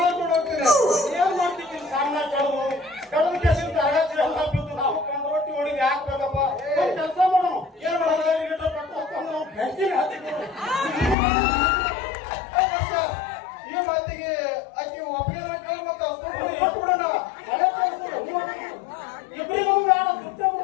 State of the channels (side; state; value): right; drops out; at 11.2 s